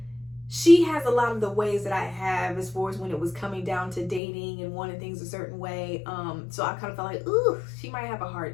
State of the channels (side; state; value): right; drops out; at 4.2 s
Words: she has a lot of the ways that I have, as far as when it was coming down to dating and wanting things a certain way. So I kind of felt like, ooh, she might have a